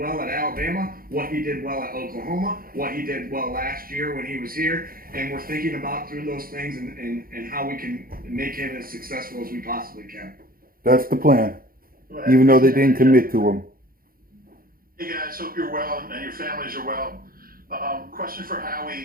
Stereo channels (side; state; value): left; late; 0.42 ms